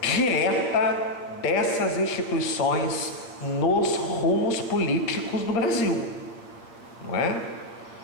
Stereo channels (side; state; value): right; late; 8.5 ms